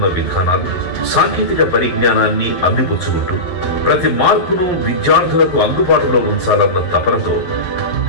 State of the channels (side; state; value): right; late; 11 ms